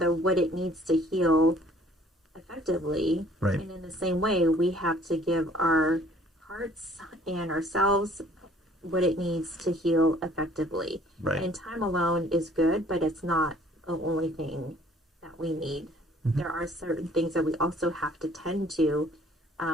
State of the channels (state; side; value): normal; both; correlation 0.57